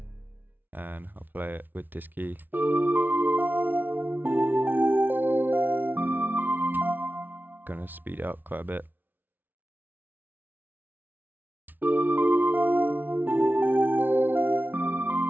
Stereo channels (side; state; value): left; late; 0.088 ms